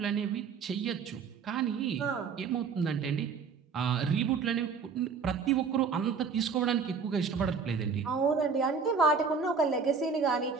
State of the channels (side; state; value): left; quieter; 5.6 dB